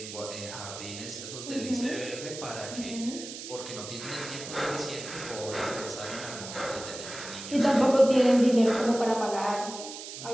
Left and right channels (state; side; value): noise; right; hiss, 10 dB below the sound